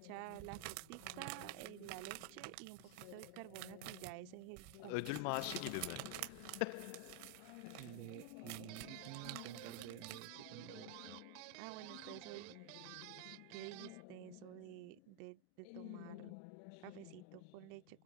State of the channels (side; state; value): both; different; correlation 0.00